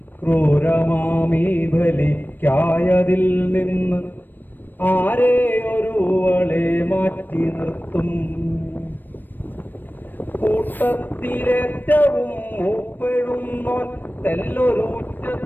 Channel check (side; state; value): right; late; 0.092 ms